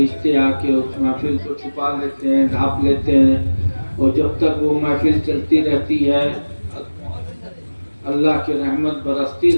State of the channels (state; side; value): inverted; both; correlation -1.00